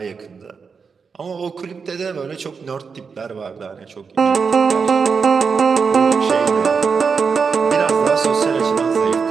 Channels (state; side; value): quieter; left; 5.5 dB